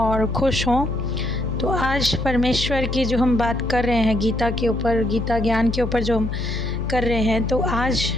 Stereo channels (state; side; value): noise; left; hum, 4 dB below the sound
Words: खुश हों। तो आज परमेश्वर की जो हम बात कर रहे हैं गीता के ऊपर, गीता ज्ञान के ऊपर जो हम कर रहे हैं, तो आज